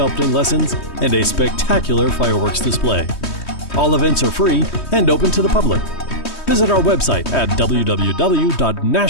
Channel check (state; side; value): late; right; 3.2 ms